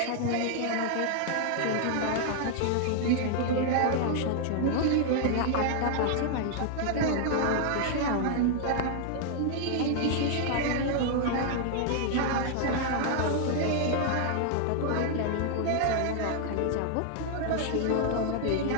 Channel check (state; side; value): different; both; correlation 0.00